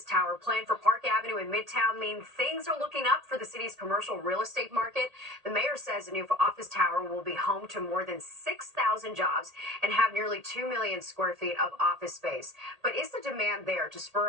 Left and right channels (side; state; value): left; late; 1.8 ms